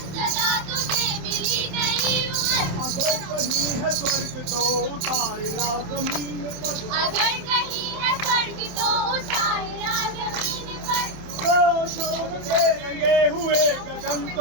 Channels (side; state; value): left; late; 27 ms